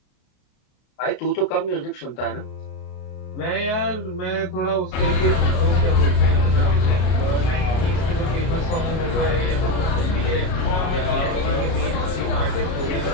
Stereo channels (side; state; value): right; late; 33 ms